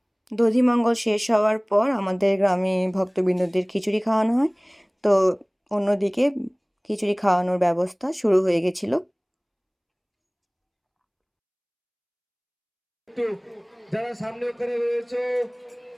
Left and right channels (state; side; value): identical; both; correlation 1.00